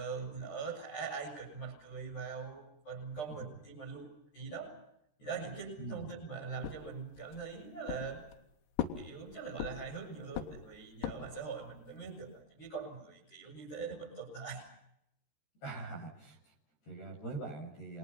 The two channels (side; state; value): right; late; 13 ms